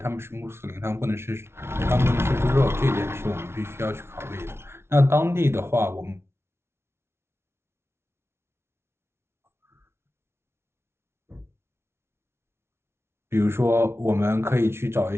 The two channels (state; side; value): late; left; 0.12 ms